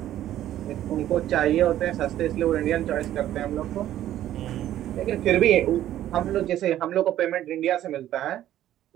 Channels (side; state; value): left; quieter; 12.6 dB